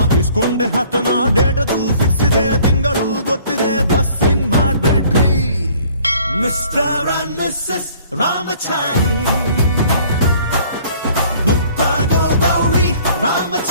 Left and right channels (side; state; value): both; inverted; correlation -0.56